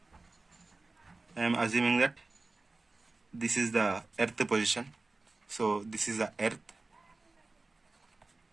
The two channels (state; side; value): quieter; left; 3.4 dB